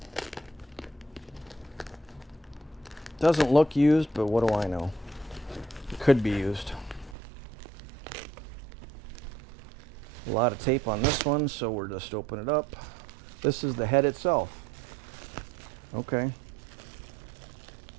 Doesn't look used, but what do I know? It could be used. A lot of tape on this one, so we're just open it up. This is the head itself. Okay.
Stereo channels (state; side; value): drops out; left; at 7.2 s